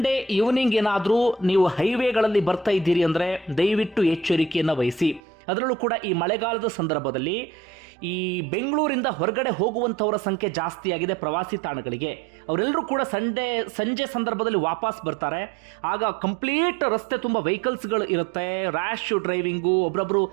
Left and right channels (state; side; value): drops out; left; at 5.2 s